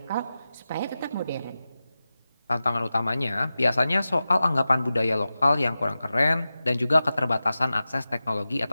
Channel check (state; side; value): inverted; both; correlation -0.94